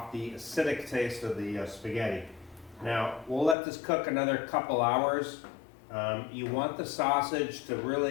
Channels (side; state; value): right; drops out; at 3.6 s